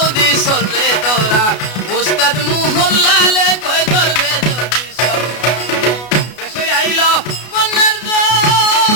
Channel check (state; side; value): late; right; 33 ms